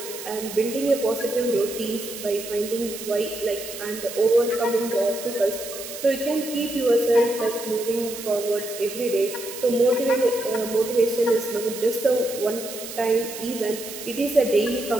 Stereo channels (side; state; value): right; noise; hiss, 10 dB below the sound